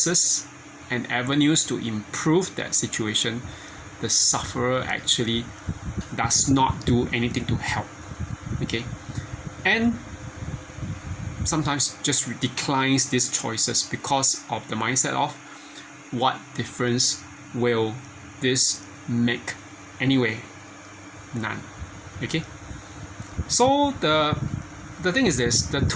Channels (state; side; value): identical; both; correlation 1.00